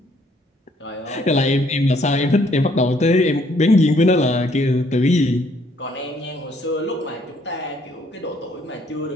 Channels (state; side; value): normal; both; correlation 0.66